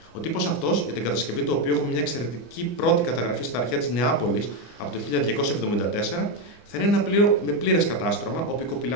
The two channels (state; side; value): late; right; 25 ms